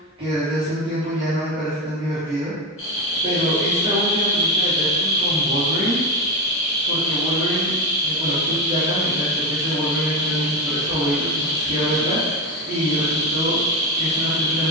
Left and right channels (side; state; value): both; normal; correlation 0.17